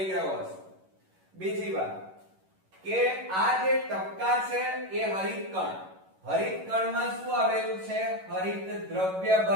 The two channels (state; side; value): late; left; 11 ms